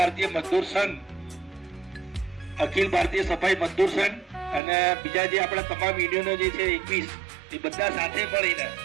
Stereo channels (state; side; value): drops out; left; at 4.6 s